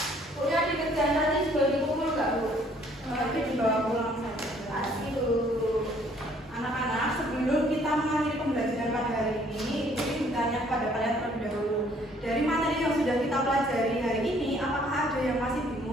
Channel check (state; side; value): normal; both; correlation 0.61